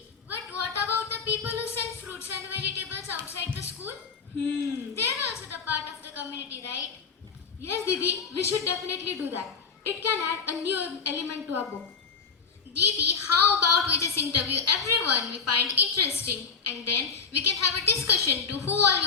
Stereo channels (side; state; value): right; quieter; 5.5 dB